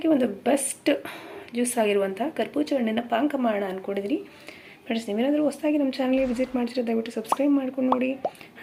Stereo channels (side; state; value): both; identical; correlation 1.00